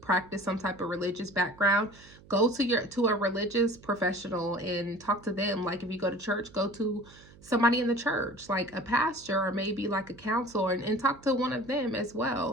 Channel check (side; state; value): right; noise; hum, 23 dB below the sound